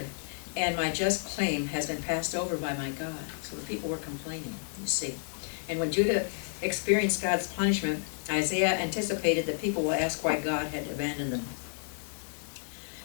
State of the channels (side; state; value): right; silent; digital silence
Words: and my just claim has been passed over by my God." So the people were complaining, you see. And when Judah experienced God's punishment, Isaiah anticipated that people will ask why God had abandoned them.